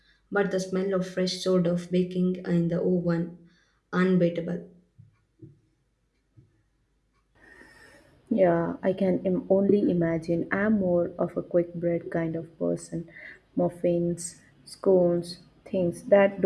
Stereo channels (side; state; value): both; identical; correlation 1.00